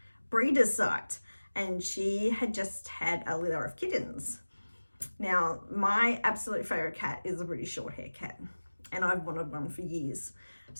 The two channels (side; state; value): both; inverted; correlation -1.00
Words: breeder's site, and she had just had a litter of kittens. Now, my absolute favourite cat is a British Shorthair cat, and I've wanted one for years.